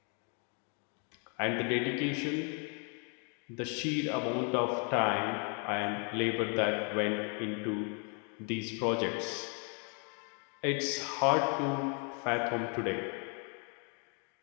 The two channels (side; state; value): right; quieter; 37.3 dB